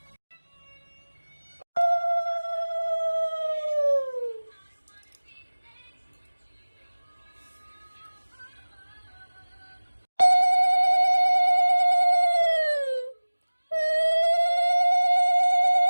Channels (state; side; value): inverted; both; correlation -1.00